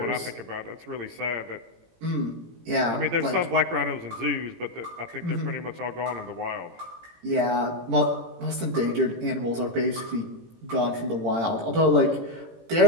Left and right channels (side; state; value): left; late; 18 ms